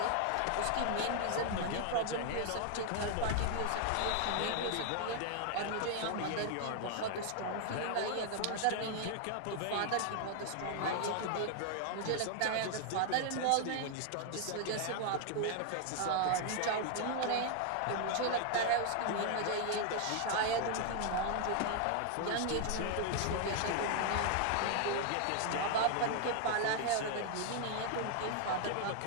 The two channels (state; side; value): different; both; correlation 0.00